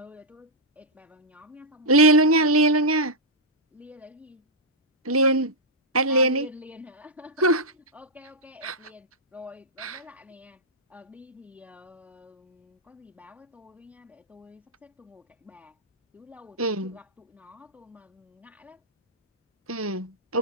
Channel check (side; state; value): both; normal; correlation -0.07